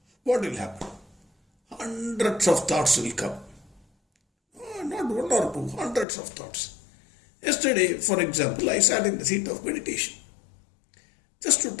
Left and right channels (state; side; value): drops out; right; at 6.1 s